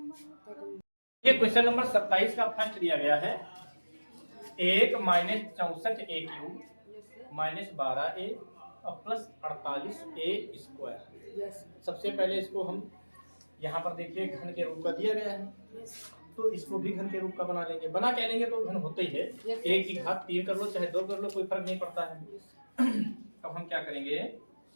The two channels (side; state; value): both; inverted; correlation -1.00